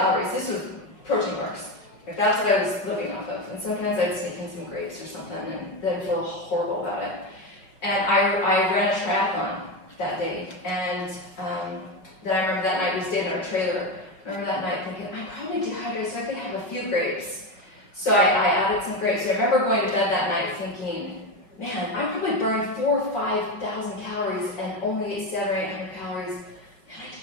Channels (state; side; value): late; right; 5.5 ms